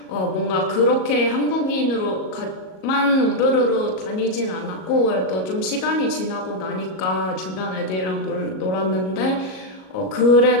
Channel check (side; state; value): right; late; 38 ms